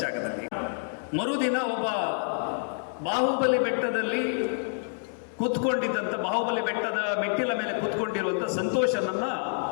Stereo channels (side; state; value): right; silent; digital silence